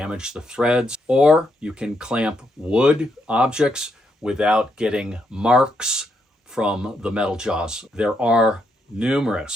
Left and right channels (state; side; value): normal; both; correlation 0.78